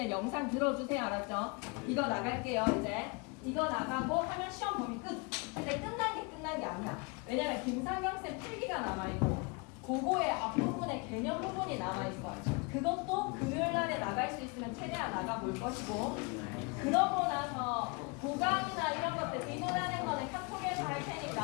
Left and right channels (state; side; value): quieter; right; 31.0 dB